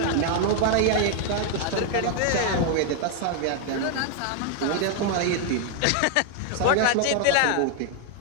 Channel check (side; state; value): both; different; correlation 0.00